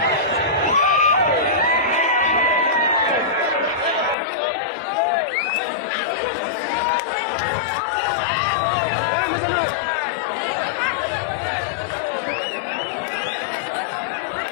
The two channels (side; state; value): right; drops out; at 4.2 s